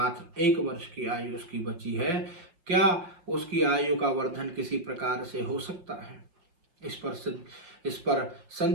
1 वर्ष की आयु उसकी बची है। क्या उसकी आयु का वर्धन किसी प्रकार से हो सकता है? इस पर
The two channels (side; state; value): left; late; 5.8 ms